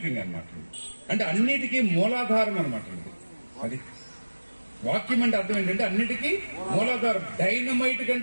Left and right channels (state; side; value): inverted; both; correlation -1.00